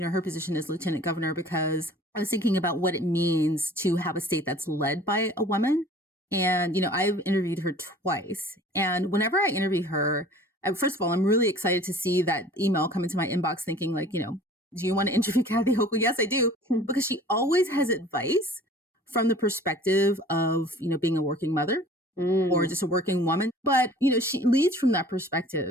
position as lieutenant governor because I was thinking about what it means to have a state that's led by a woman. And, I've interviewed her twice. And whenever I interview her, first of all, I'm really excited to see that email come into my inbox thinking like, do you want to interview Kathy Hochul? Yes, I do. Because she always has advice from the perspective of, being a working mother or just a working woman. But, she leads from that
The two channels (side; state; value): both; normal; correlation 0.47